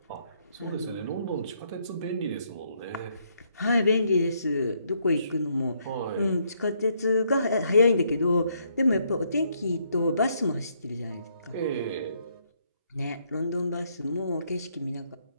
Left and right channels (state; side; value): inverted; both; correlation -0.73